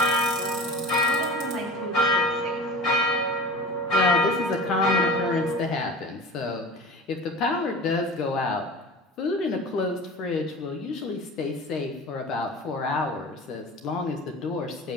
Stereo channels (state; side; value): normal; both; correlation 0.35